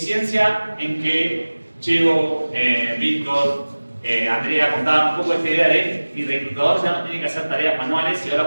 en que Chego, Víctor, Andrea contaban un poco esta idea de mi reclutador ya no tiene que hacer tareas manuales y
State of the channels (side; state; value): both; inverted; correlation -1.00